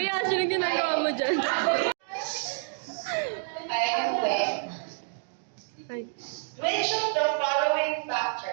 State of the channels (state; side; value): silent; left; digital silence